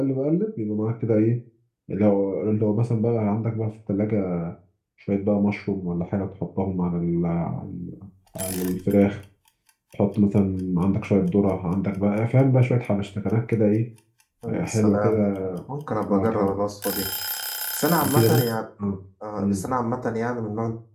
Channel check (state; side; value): identical; both; correlation 1.00